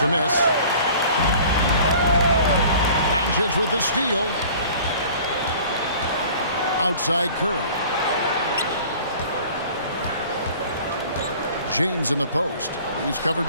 miss. Doncic with the steal. Outside Curry. James in the post. He's covered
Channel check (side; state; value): both; inverted; correlation -0.47